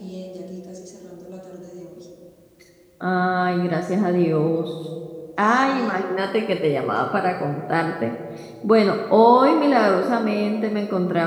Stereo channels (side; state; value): both; identical; correlation 1.00